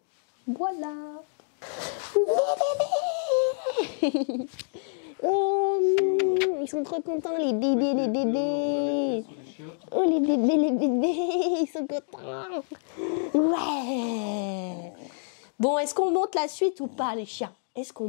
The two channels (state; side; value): silent; right; digital silence